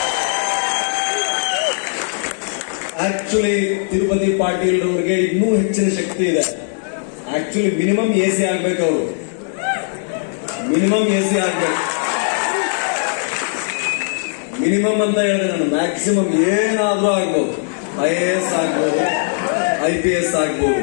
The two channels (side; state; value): right; silent; 67 dB below the other